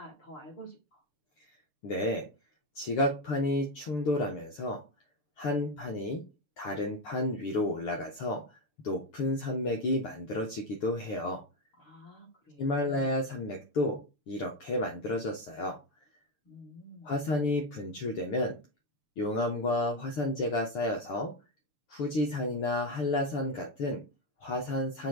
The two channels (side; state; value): right; late; 6.8 ms